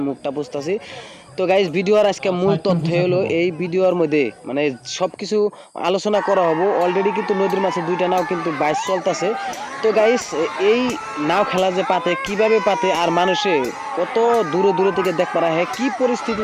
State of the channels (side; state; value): both; identical; correlation 1.00